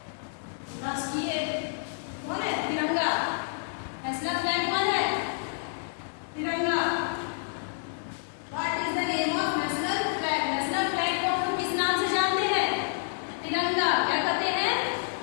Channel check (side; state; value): right; silent; digital silence